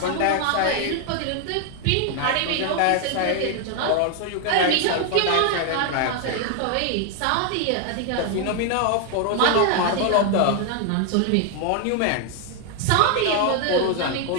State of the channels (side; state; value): both; different; correlation 0.00